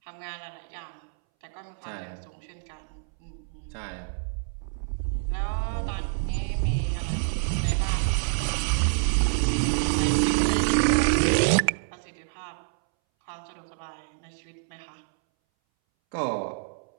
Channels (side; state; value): left; silent; 60 dB below the other